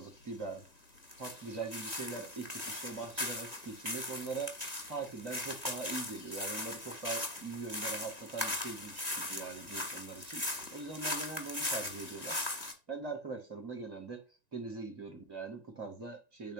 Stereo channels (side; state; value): left; late; 1.9 ms